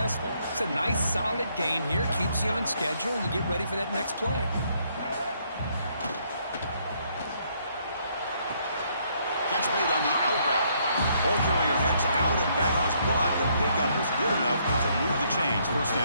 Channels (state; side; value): inverted; both; correlation -0.70